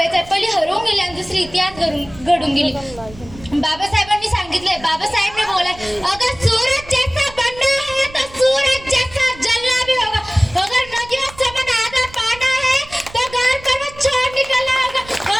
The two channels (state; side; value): noise; right; rumble, 19 dB below the sound